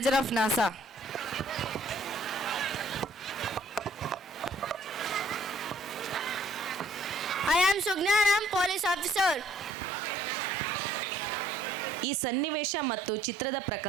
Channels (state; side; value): drops out; left; at 9.8 s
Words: of NASA. I am Sugna and I am police officer. ಈ ಸನ್ನಿವೇಶ ಮತ್ತು ಚಿತ್ರದ